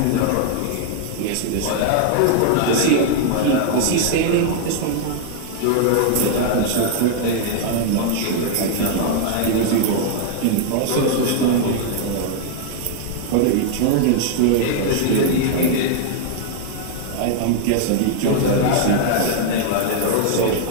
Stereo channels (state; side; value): different; both; correlation 0.00